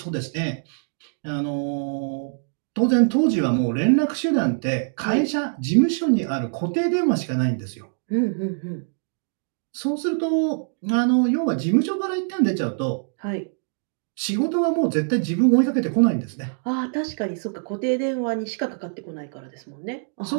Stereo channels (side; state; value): left; silent; digital silence